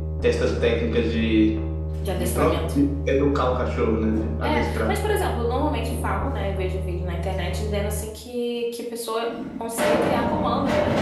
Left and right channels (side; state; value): both; identical; correlation 1.00